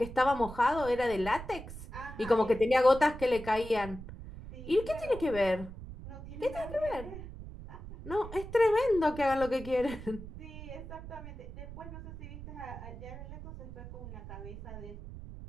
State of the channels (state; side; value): noise; right; rumble, 12 dB below the sound